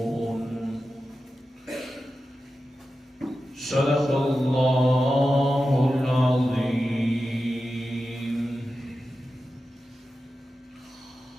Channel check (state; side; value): normal; both; correlation 0.92